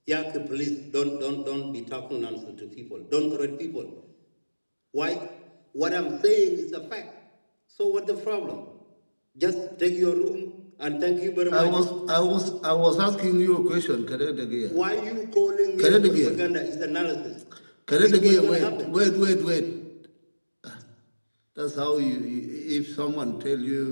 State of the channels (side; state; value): both; inverted; correlation -1.00